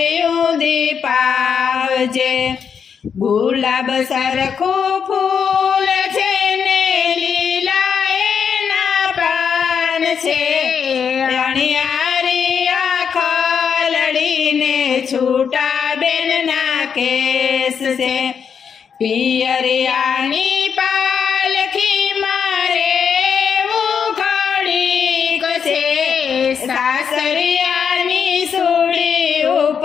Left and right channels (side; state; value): right; quieter; 6.9 dB